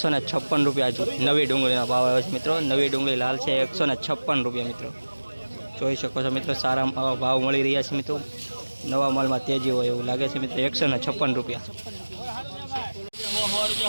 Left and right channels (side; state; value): both; inverted; correlation -1.00